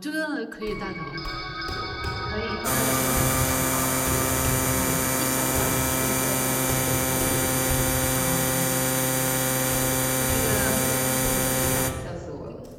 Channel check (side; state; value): both; identical; correlation 1.00